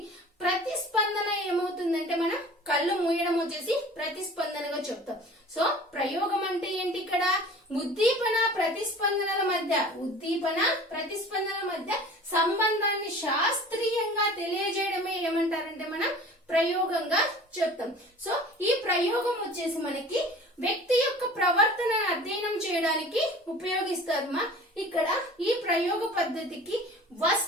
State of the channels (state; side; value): normal; both; correlation 0.43